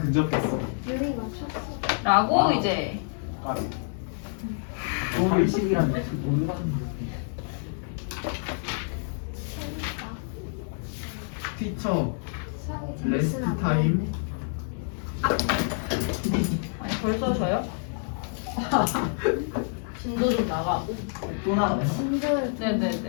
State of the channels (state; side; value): silent; right; 60 dB below the other